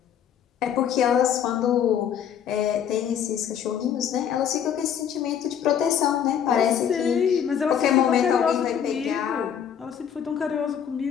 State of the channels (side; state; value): right; quieter; 8.7 dB